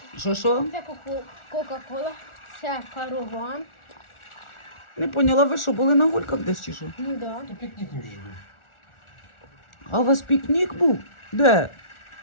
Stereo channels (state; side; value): late; right; 1.4 ms